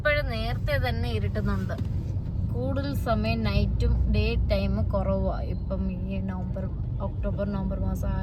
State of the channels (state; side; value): identical; both; correlation 1.00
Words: നേരത്തെ തന്നെ ഇരുട്ടുന്നുണ്ട്. കൂടുതൽ സമയം നൈറ്റും ഡേ ടൈം കുറവാണ് ഇപ്പം ഈ ഒക്ടോബർ നവംബർ മാസം